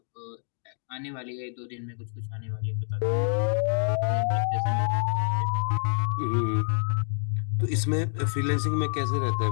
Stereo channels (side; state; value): right; silent; 60 dB below the other